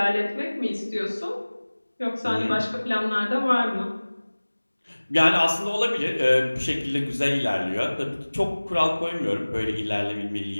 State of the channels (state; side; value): inverted; both; correlation -1.00